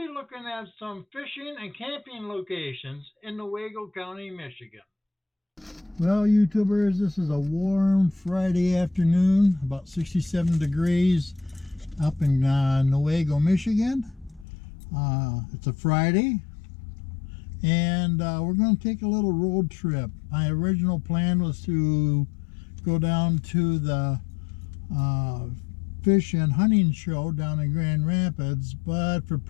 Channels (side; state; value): right; drops out; at 14.5 s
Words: looking at some fishing and camping locations in Newaygo County, Michigan. Well YouTubers, this is a warm Friday afternoon, about 67 degrees up in Newaygo, Michigan. It's a Friday and we're going to take a little road trip. My original plan was to go down to the fish and hunting show down in Grand Rapids, but for